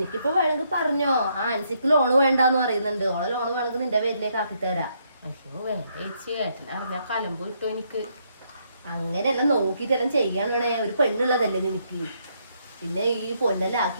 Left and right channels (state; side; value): inverted; both; correlation -0.74